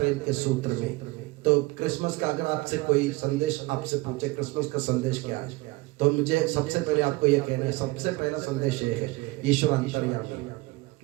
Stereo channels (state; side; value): quieter; left; 22.2 dB